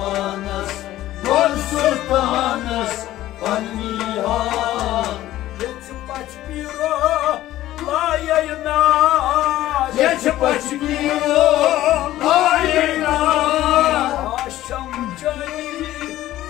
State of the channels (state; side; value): quieter; right; 14.6 dB